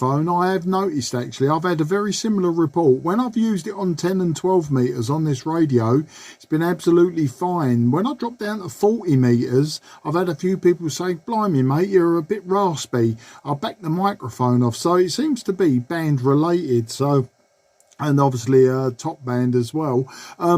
I have noticed actually, I've had a very similar report. When I've used it on 10 and 12 metres on this radio, it's been absolutely fine. When I dropped down to 40 metres, I've had a few people say, blimey mate, you're a bit raspy. I'll back the microphone off. So it seems to be band related, so... and obviously top band as well.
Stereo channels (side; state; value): both; identical; correlation 1.00